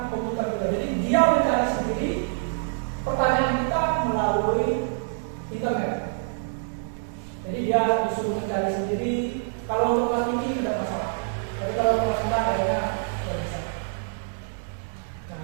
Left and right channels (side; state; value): left; silent; digital silence